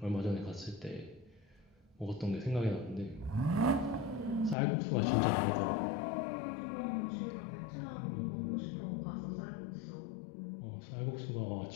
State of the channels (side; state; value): right; drops out; at 4.5 s